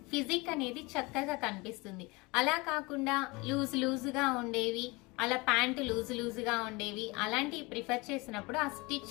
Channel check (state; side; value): quieter; right; 25.0 dB